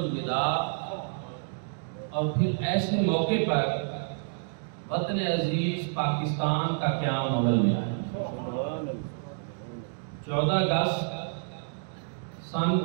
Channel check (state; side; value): silent; left; digital silence